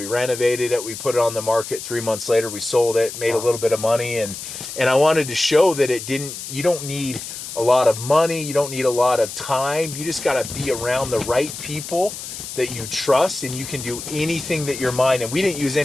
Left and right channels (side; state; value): left; noise; hiss, 9 dB below the sound